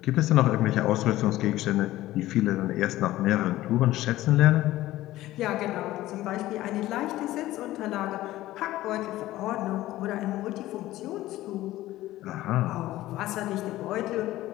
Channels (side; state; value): right; quieter; 15.9 dB